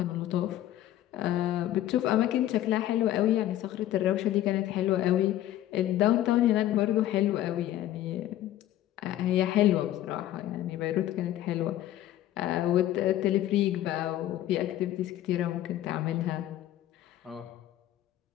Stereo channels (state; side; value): quieter; right; 13.2 dB